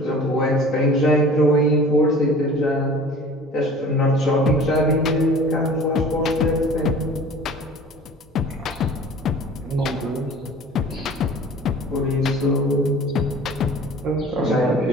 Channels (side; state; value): both; normal; correlation 0.44